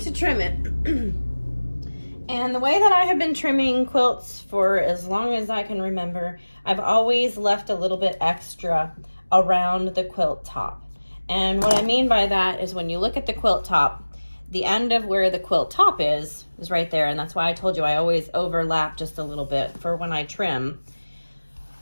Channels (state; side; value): inverted; both; correlation -1.00